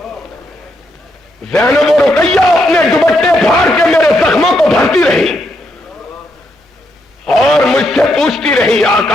زینب و رقیہ اپنے دوپٹے پھاڑ کے میرے زخموں کو بھرتی رہی، اور مجھ سے پوچھتی رہی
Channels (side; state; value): both; normal; correlation 0.79